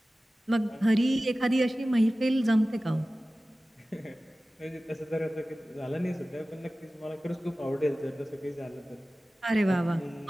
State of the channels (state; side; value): normal; both; correlation 0.96